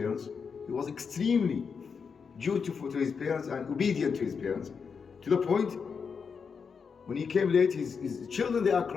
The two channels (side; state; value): right; quieter; 5.9 dB